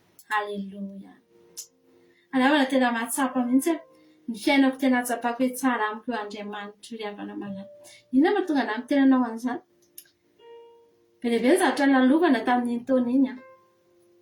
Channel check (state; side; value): identical; both; correlation 1.00